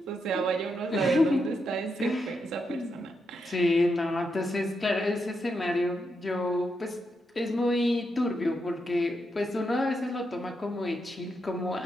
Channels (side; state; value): both; normal; correlation 0.83